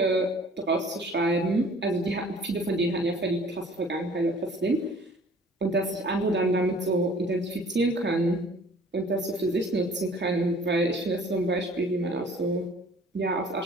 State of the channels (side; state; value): both; normal; correlation 0.51